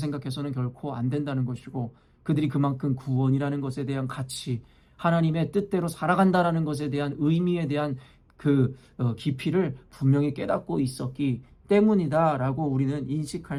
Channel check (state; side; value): identical; both; correlation 1.00